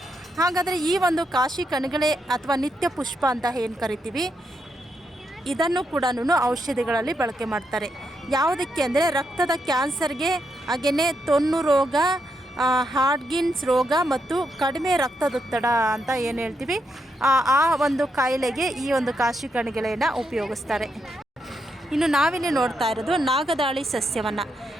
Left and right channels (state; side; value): normal; both; correlation 0.81